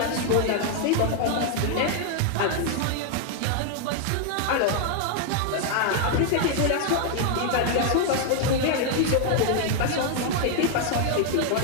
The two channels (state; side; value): different; both; correlation 0.00